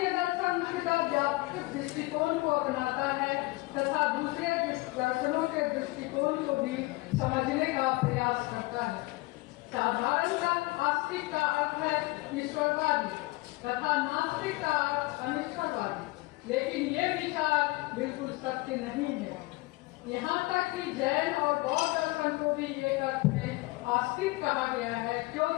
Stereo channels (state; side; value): quieter; right; 22.3 dB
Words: दर्शन मुख्यतः व्यापक दृष्टिकोण को अपनाता है तथा दूसरे दर्शनों के दृष्टिकोण को भी समझने का प्रयास करता है। साधारणतः आस्तिक का अर्थ है ईश्वरवादी तथा नास्तिक का अर्थ अनिश्वरवादी, लेकिन ये विचार बिल्कुल सत्य नहीं है। यहाँ तक कि जैन और बौद्ध दर्शन को भी एक अर्थ में आस्तिक कहा गया है,